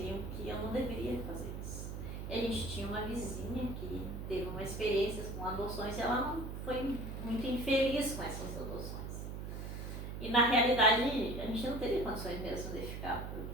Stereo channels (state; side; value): noise; right; hum, 6 dB below the sound